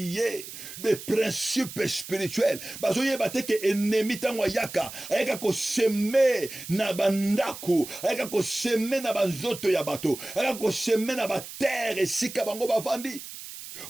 des principes spirituels. Bazo yeba te ke ennemi tangwa yaka ayaka ko semer na bandaku ayaka ko semer na banzoto ya bato ayaka ko semer na ba terre esika bango bavandi.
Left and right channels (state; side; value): noise; right; hiss, 12 dB below the sound